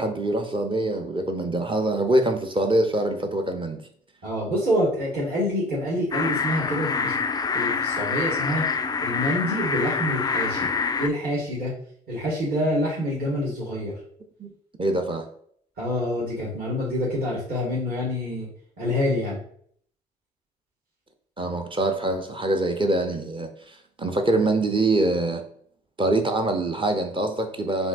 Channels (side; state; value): both; normal; correlation 0.47